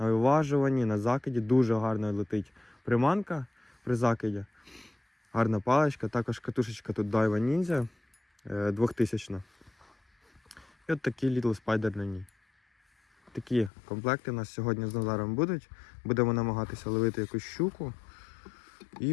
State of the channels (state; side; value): drops out; right; at 13.7 s